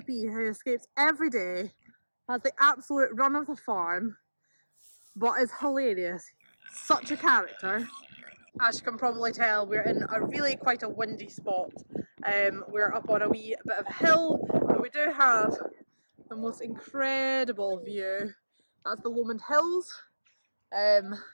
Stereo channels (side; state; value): both; inverted; correlation -1.00